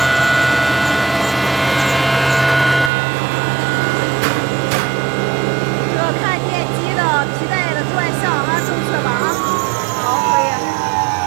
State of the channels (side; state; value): left; drops out; at 2.9 s